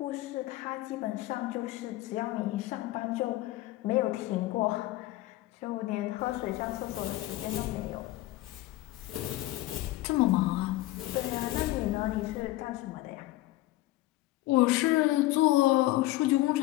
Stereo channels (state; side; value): quieter; right; 17.3 dB